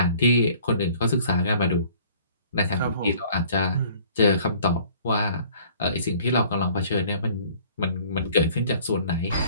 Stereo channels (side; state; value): both; inverted; correlation -0.54